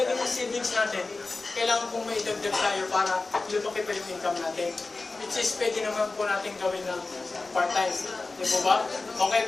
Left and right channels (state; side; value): quieter; right; 3.6 dB